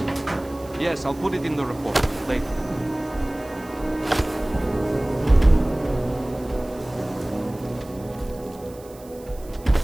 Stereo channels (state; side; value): noise; right; hiss, 23 dB below the sound